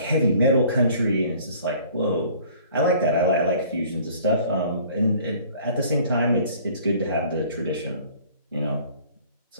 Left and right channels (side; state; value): both; inverted; correlation -0.52